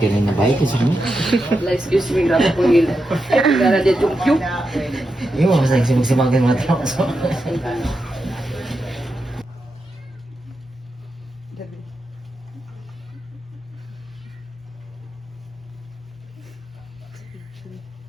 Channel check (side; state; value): both; normal; correlation 0.87